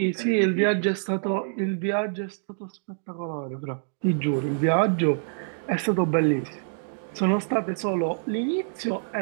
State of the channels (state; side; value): silent; left; digital silence